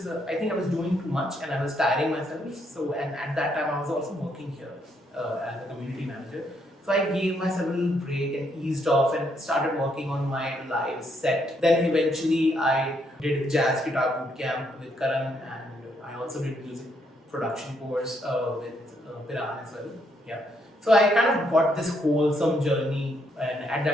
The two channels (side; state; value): both; normal; correlation 0.74